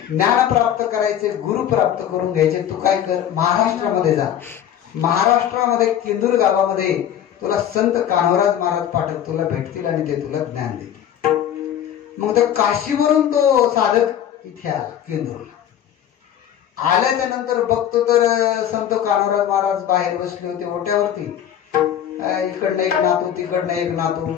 ज्ञान प्राप्त करायचे, गुरु प्राप्त करून घ्यायचे, तू काय कर, महाराष्ट्रामध्ये जा. महाराष्ट्रामध्ये केंदूर गावामध्ये तुला संत कान्होराज महाराज पाठक तुला भेटतील आणि ते तुला ज्ञान देतील. मग तर काशीवरून तो साधक इथे आला केंदूरला. आल्याच्या नंतर बघतो तर संत कान्होराज महाराज बाहेर बसले होते ओट्यावरती. इकडनं एक नातू तिकडनं एक नातू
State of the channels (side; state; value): right; quieter; 10.2 dB